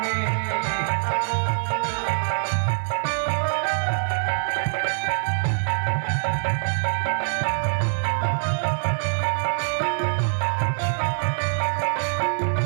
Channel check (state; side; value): silent; left; digital silence